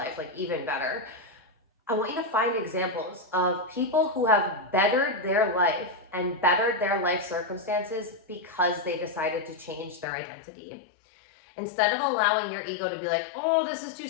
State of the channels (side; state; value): right; drops out; at 10.1 s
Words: like even better, I want you to find examples of people who have bettered their life and bettered their life circumstances because they decided to change their identity. Instead of allowing your ego to be like, oh, this is too